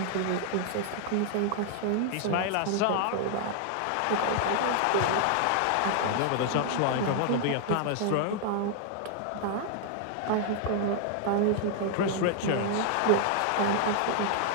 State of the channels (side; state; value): both; different; correlation 0.00